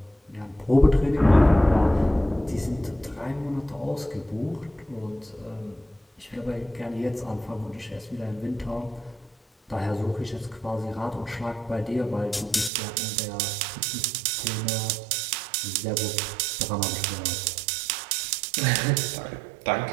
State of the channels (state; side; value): drops out; left; at 12.7 s